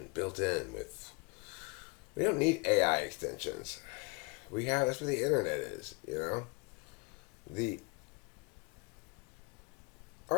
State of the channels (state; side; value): quieter; right; 30.6 dB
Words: built in with. We don't need AI extensions. That's what the internet is, you know? The